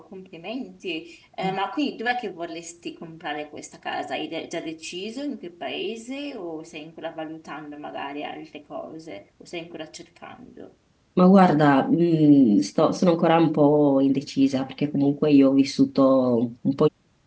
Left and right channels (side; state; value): both; identical; correlation 1.00